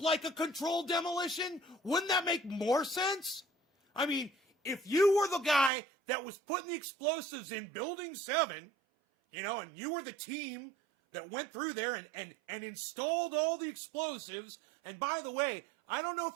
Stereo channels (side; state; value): left; drops out; at 5.7 s